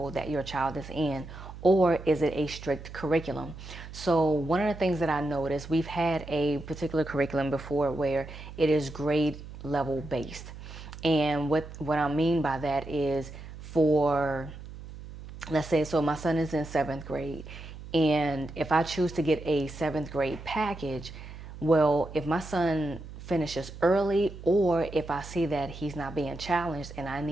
that your child is in? or is it a strict curriculum? So one of the things that I noticed, we've had a particular curriculum before where it is grade level based. And what I mean by that is, for, let's say, so my son is in seventh grade, and if I choose to get a seventh grade package, well, if my son finishes early, or if I see that he's not being challenged and I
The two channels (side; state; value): right; noise; hum, 13 dB below the sound